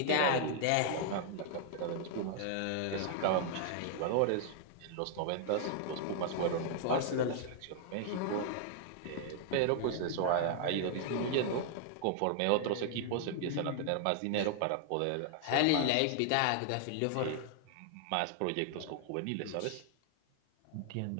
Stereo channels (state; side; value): different; both; correlation 0.00